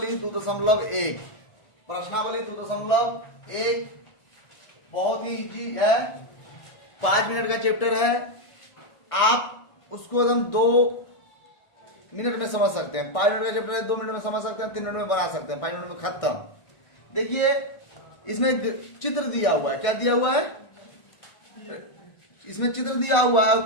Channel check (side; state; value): right; late; 1.6 ms